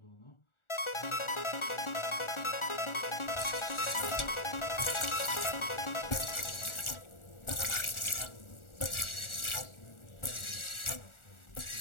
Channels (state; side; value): late; right; 1.4 ms